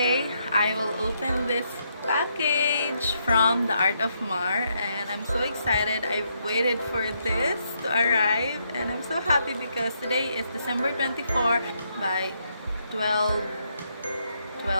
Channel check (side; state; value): both; inverted; correlation -0.77